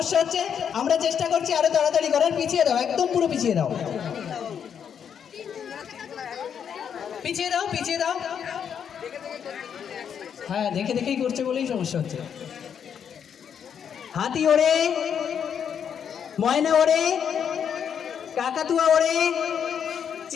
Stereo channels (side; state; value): right; quieter; 7.9 dB